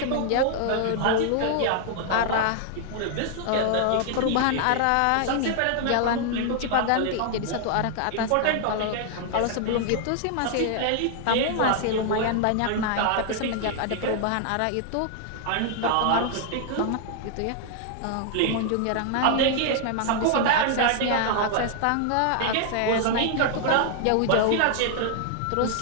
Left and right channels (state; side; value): different; both; correlation 0.00